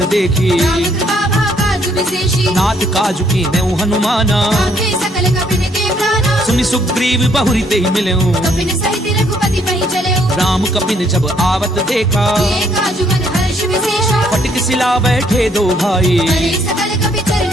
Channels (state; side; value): normal; both; correlation 0.68